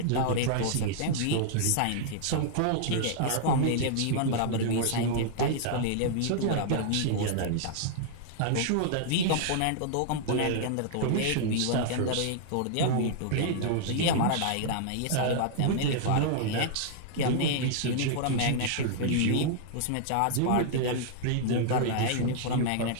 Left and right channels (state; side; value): different; both; correlation -0.01